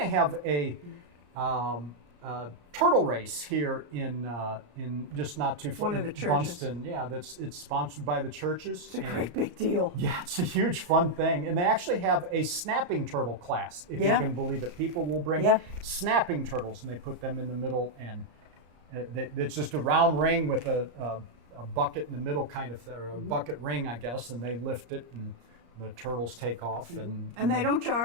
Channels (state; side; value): late; left; 34 ms